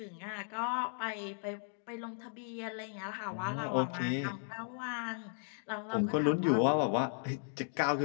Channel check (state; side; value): silent; right; digital silence